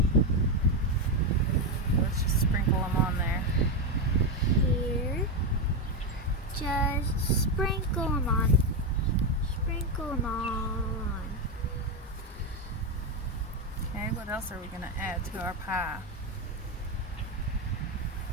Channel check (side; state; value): both; normal; correlation 0.09